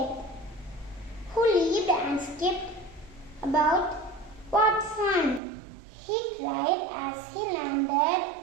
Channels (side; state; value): left; drops out; at 5.4 s